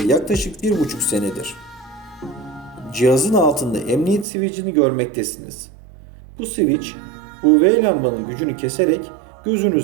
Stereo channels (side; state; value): left; drops out; at 4.2 s